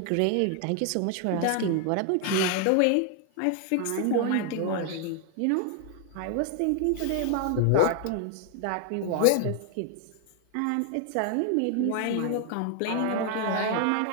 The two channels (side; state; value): both; different; correlation 0.00